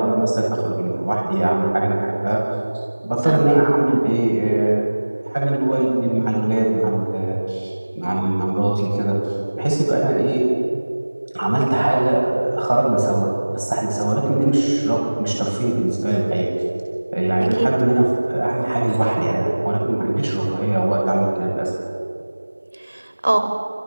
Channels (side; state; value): both; inverted; correlation -1.00